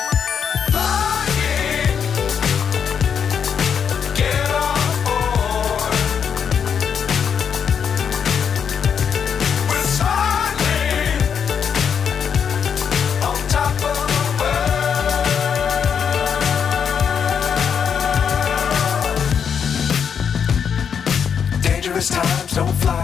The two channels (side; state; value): right; quieter; 7.3 dB